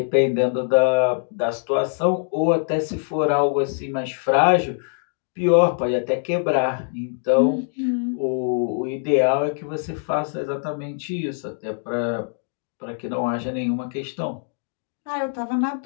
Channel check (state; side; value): silent; right; digital silence